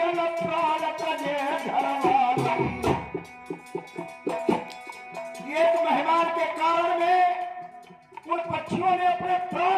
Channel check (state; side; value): identical; both; correlation 1.00